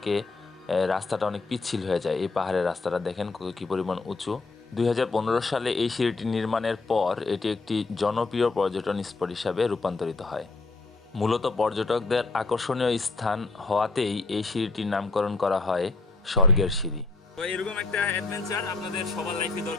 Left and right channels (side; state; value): right; quieter; 3.6 dB